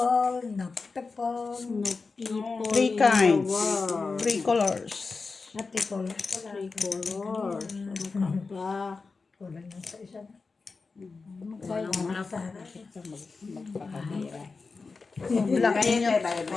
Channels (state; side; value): quieter; right; 4.3 dB